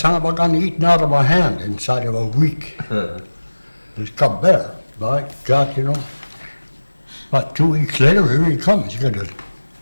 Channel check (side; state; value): both; inverted; correlation -1.00